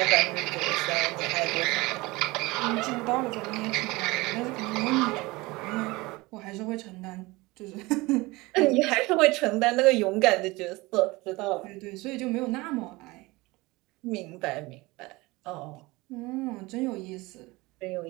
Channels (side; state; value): left; quieter; 22.2 dB